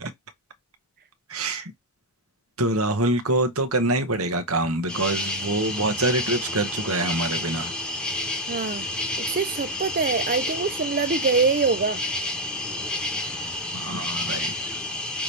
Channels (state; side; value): normal; both; correlation 0.02